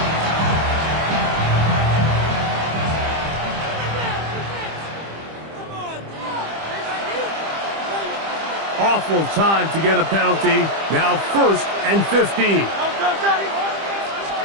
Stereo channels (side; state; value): left; late; 25 ms